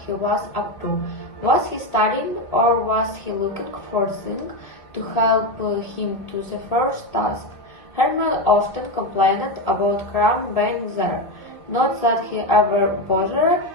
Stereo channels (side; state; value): right; late; 1.6 ms